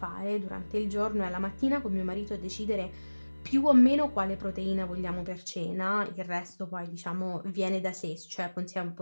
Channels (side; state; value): both; inverted; correlation -1.00